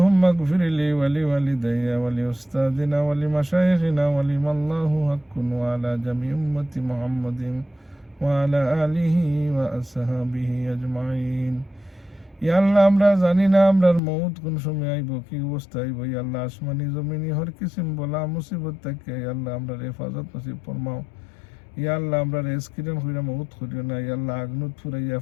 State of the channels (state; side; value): drops out; right; at 14.0 s